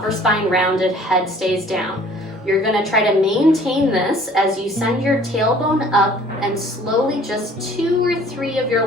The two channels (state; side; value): normal; both; correlation 0.53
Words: spine rounded, head stays down. You're gonna try to maintain this as you send your tailbone up, and slowly just 2 or 3 of your